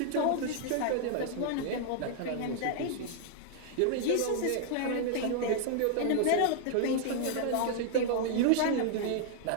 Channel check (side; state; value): both; different; correlation 0.00